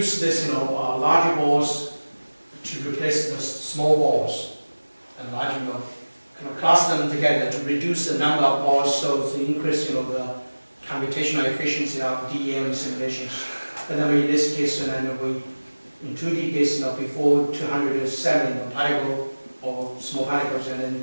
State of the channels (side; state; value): both; inverted; correlation -1.00